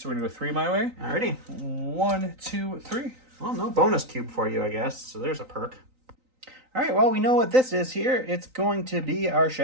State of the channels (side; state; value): left; late; 3.9 ms